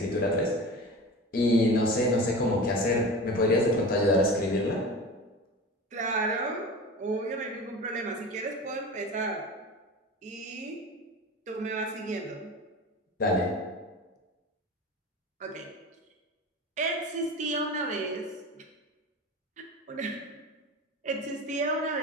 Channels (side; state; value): both; normal; correlation 0.32